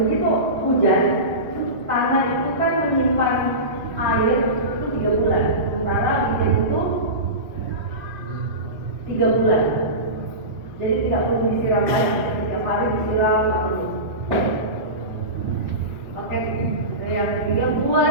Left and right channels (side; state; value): left; late; 3.0 ms